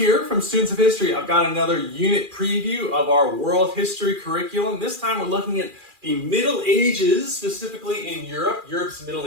from Students of History. I've got another unit preview of our world history curriculum. This time we're looking at the Middle Ages, specifically in Europe, Europe's Middle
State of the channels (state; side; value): late; left; 2.4 ms